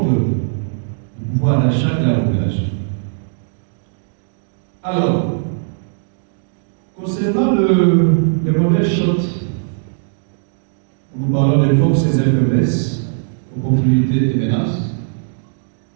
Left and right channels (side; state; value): left; silent; digital silence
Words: du pouvoir d'achat de la population. Alors, concernant le modèle SHOT, nous parlons des forces et des faiblesses, opportunités et menaces.